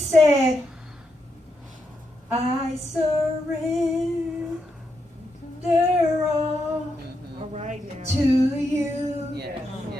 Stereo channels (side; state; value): both; normal; correlation 0.83